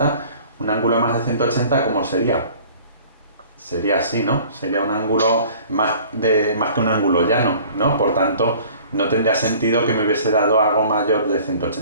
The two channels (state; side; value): inverted; both; correlation -0.50